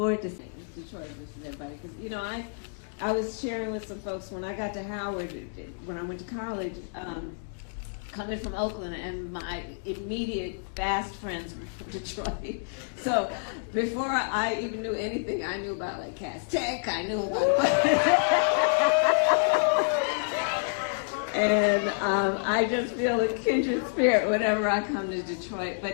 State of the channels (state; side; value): silent; right; digital silence